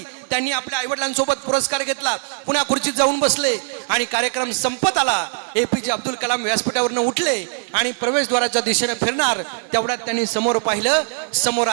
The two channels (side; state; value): left; silent; 59 dB below the other